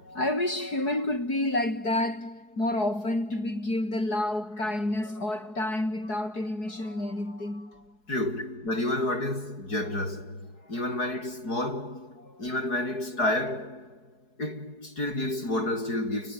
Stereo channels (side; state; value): right; late; 4.7 ms